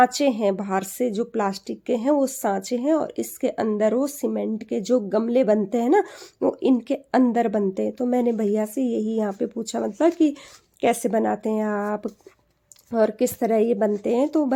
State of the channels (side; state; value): both; identical; correlation 1.00